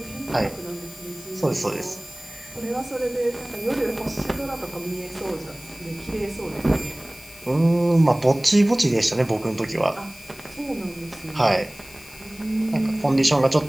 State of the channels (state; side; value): noise; left; hiss, 20 dB below the sound